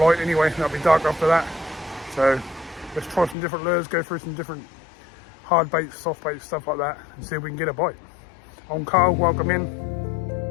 anyway, it'll be dark after that. So let's try some different lures, go through some different hard baits, soft baits, stuff like that, and see if we can get a bite. I'm Carl, welcome in.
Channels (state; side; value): drops out; right; at 3.4 s